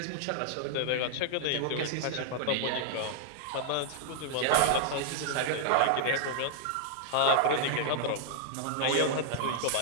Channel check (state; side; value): different; both; correlation -0.01